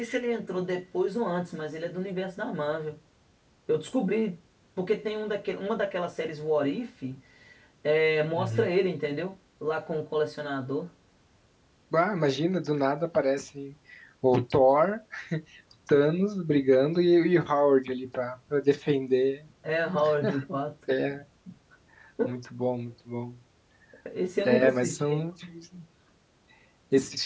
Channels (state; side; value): identical; both; correlation 1.00